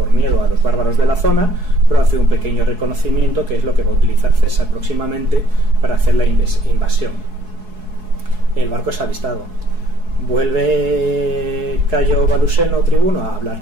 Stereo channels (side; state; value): left; late; 4.7 ms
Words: miedo a los bárbaros de la zona, pero hace un pequeño reconocimiento que es lo que va a utilizar César próximamente para hacer la invasión. El barco es avistado. Vuelve Cayo Baluseno, tribuno, a hablar